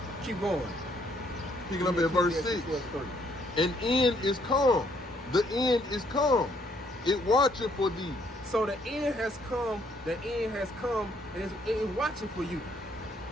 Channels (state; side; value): normal; both; correlation 0.68